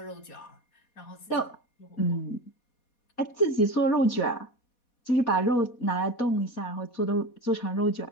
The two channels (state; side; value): late; right; 4.2 ms